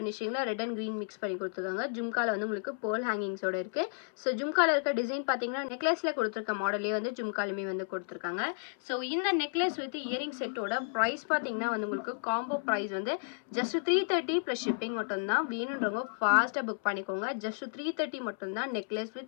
ரெட் அண்ட் க்ரீன் மிக்ஸ் பண்ணி கொடுத்துருக்காங்க. ஜும்காவில் வந்து உங்களுக்கு பேர்ல் ஹேங்கிங்ஸோட இருக்குது. ஸோ ஜும்காவில் இருக்க டிசைன் பார்த்தீங்கன்னா நெக்லஸில் கொடுத்துருக்க மாடலே வந்து ஜும்காலுமே வந்து கொடுத்துருக்காங்க. ஸோ இந்த necklace with earring set price பார்த்தீங்கன்னா வந்து உங்களுக்கு காம்போ பிரைஸ் வந்து ஜஸ்ட் 330 ப்ளஸ் ஷிப்பிங் மட்டும்தான். வேணுன்றவங்க ஃபாஸ்ட்டாக புக் பண்ணிக்கோங்க. ஜஸ்ட் 330 மட்டும்தான் நெக்லஸ்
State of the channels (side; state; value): right; silent; 56 dB below the other